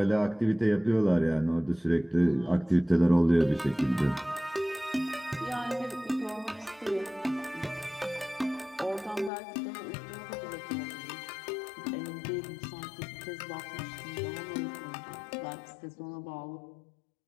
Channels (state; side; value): drops out; right; at 9.3 s